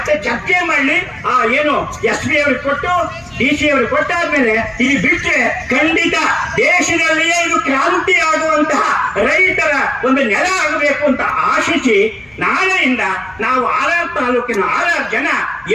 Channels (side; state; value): left; noise; hum, 29 dB below the sound